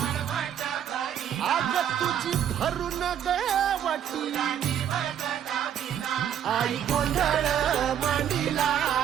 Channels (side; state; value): left; quieter; 9.5 dB